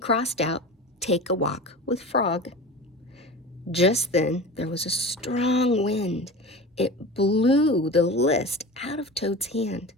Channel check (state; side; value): normal; both; correlation 0.32